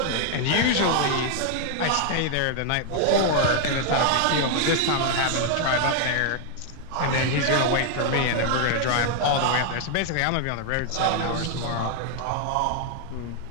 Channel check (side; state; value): both; different; correlation 0.00